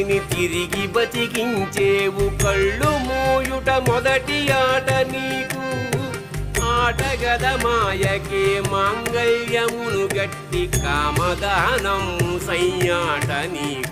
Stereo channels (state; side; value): identical; both; correlation 1.00